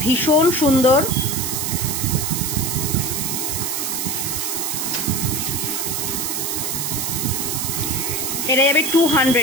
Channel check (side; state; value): right; noise; hiss, 1 dB below the sound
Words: ভীষণ সুন্দর। এটা যাবে